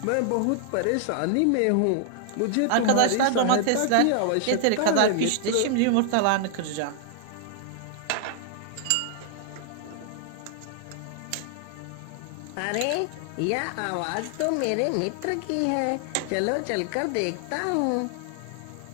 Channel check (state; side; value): different; both; correlation 0.00